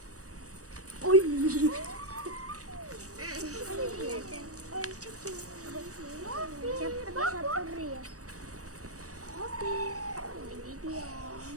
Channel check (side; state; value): left; late; 0.66 ms